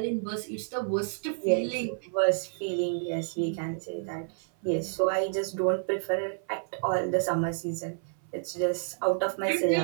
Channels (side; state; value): left; silent; 58 dB below the other